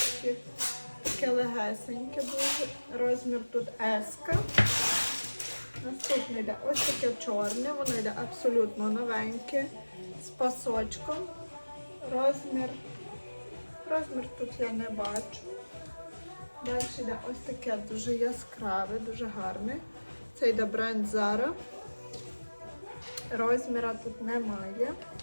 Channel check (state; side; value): inverted; both; correlation -1.00